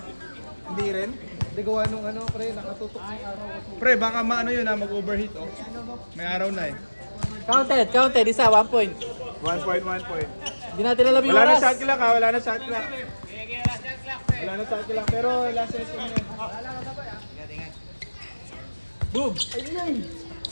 Hindi rin. Hindi gawa nung ano, pre, nakatutok ng araw kasi. Pre, baka maano yun mag-overheat oh. May araw na eh. Counted. Isa, 1 point. 1 point, 1 point. Hindi natin alam yung Wala na oras. shot clock ha, wala na shot clock. Wala na shot clock, pero last set ko na yan. Boom!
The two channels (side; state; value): both; inverted; correlation -1.00